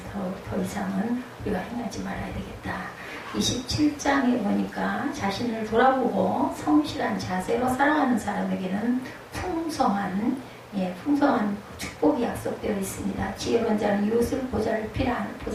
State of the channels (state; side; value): identical; both; correlation 1.00